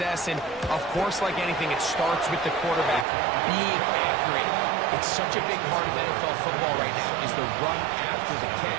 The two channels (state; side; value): drops out; left; at 3.1 s